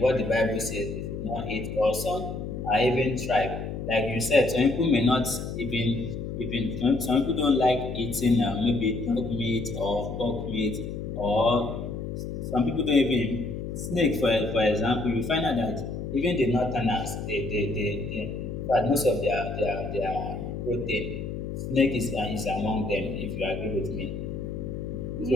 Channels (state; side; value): noise; left; hum, 6 dB below the sound